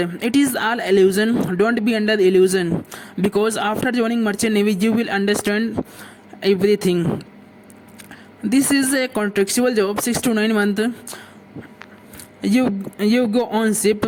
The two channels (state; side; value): identical; both; correlation 1.00